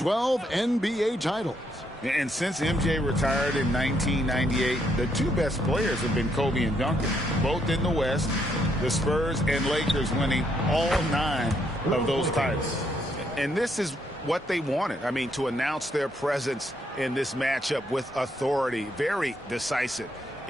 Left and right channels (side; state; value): both; normal; correlation 0.74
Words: NBA titles. And since MJ retired in 1998, the two best players have been Kobe and Duncan, both in the West. The Spurs and Lakers winning all 9 of those titles. And this is what they wanted. I mean, to announce their presence in this matchup with authority, very decisive.